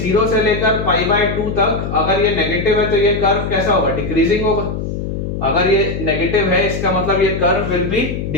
से लेकर π/2 तक अगर ये नेगेटिव है तो ये कर्व कैसा होगा, डिक्रीजिंग होगा। अगर ये नेगेटिव है इसका मतलब ये कर्व विल बी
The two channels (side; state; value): left; noise; hum, 4 dB below the sound